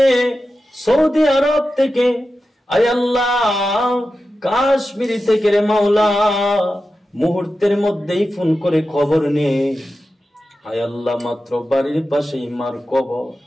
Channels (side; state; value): both; normal; correlation 0.92